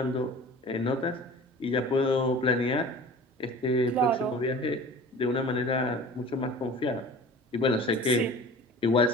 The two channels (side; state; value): both; normal; correlation 0.41